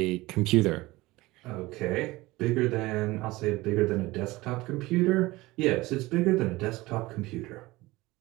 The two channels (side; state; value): left; quieter; 20.0 dB